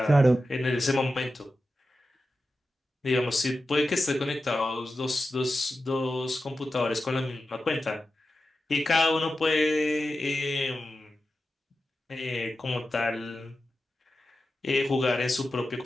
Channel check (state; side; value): normal; both; correlation 0.92